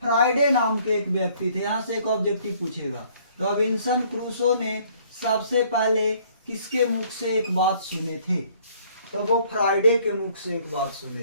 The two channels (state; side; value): inverted; both; correlation -0.60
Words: फ्राइडे नाम के एक व्यक्ति थे, यहाँ से एक ऑब्जेक्टिव पूछेगा, रॉबिन्सन क्रूसो ने सबसे पहले किसके मुख से एक बात सुने थे? तो वो फ्राइडे के मुख से एक बात सुने